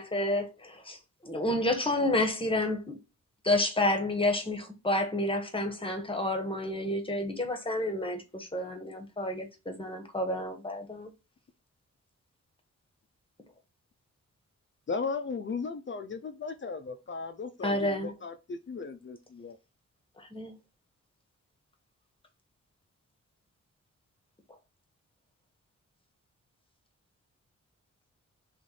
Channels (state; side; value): normal; both; correlation 0.25